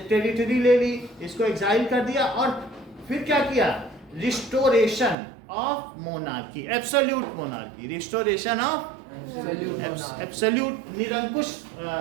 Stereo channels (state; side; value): drops out; left; at 5.2 s